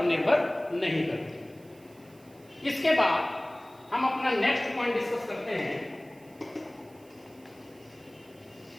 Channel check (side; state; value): right; noise; hiss, 28 dB below the sound